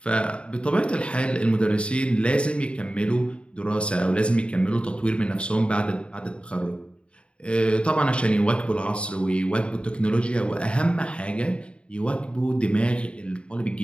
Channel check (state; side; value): late; right; 0.057 ms